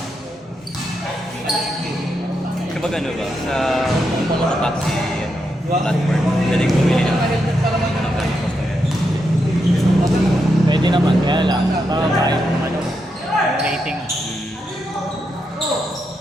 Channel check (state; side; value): normal; both; correlation 0.83